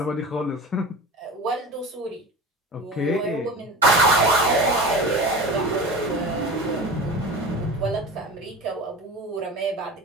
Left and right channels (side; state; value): both; normal; correlation 0.32